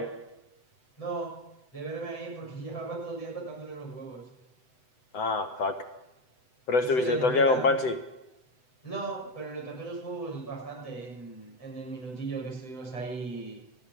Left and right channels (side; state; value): right; late; 7.9 ms